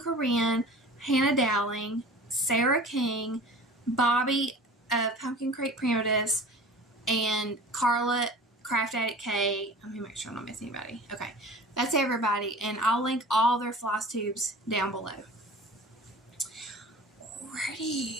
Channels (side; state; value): both; normal; correlation 0.40